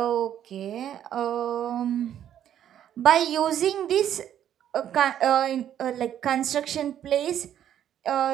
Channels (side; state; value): left; quieter; 10.4 dB